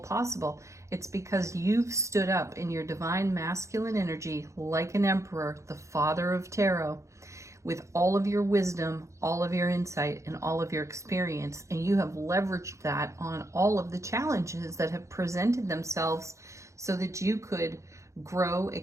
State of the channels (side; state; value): left; late; 0.15 ms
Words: It's because you've stood up in your divine masculine energy like an emperor, the father of tarot, with all of your wisdom, all of your insight, and all of your experience. And you have leveraged that on all of the challenges that have presented themselves so that you could grow,